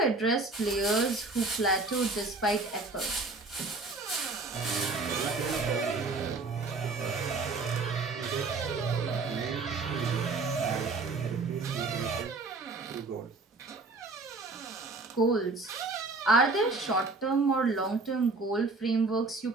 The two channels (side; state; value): left; quieter; 3.6 dB